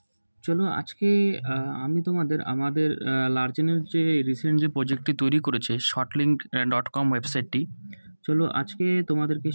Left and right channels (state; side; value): inverted; both; correlation -1.00